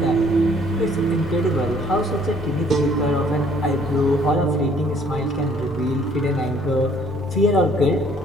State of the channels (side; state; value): both; normal; correlation 0.60